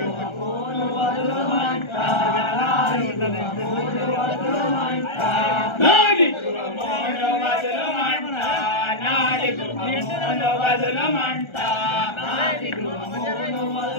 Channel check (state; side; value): late; right; 1.3 ms